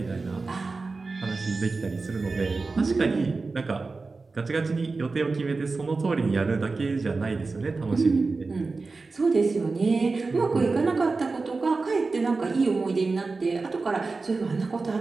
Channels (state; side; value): quieter; left; 3.9 dB